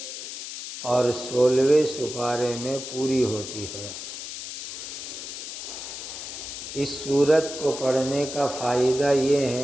اور 16ویں سپارے میں پوری ہوتی ہے. اس سورت کو پڑھنے کا فائدہ یہ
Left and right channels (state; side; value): noise; left; hiss, 8 dB below the sound